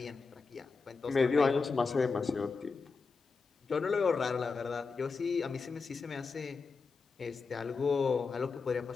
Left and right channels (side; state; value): right; quieter; 4.7 dB